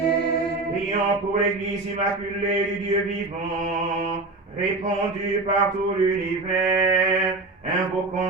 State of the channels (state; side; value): quieter; left; 3.3 dB